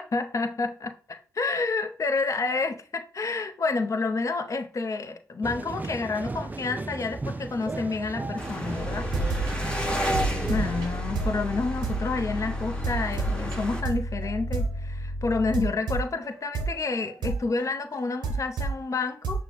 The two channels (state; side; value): normal; both; correlation 0.69